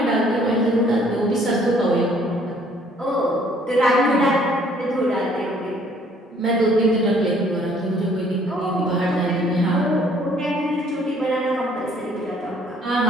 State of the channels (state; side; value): normal; both; correlation 0.60